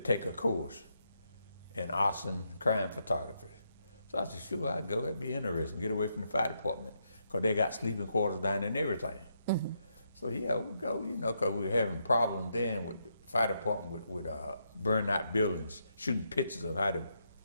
a course in arson crime photography. So I said, sure, I'd go. That'd be interesting. Get away from the fire department, because they got sleeping quarters down there and everything. So yeah, we'll go, you know, because we were having problems then with the fire department with burning out buildings, shooting pictures of how the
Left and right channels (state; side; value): inverted; both; correlation -0.79